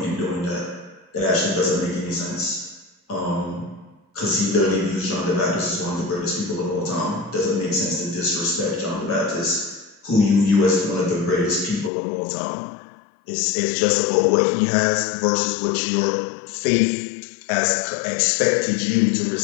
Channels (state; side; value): drops out; right; at 11.9 s